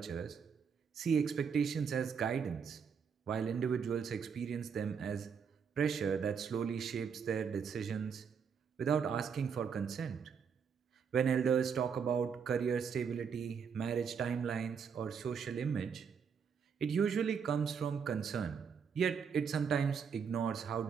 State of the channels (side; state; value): left; quieter; 6.6 dB